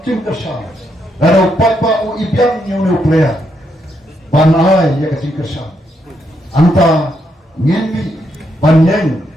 kersang. Lalu upat pak uibiang yang nuklear. Banai ya kecil kesan, anta ngeni banyak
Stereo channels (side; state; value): both; normal; correlation 0.78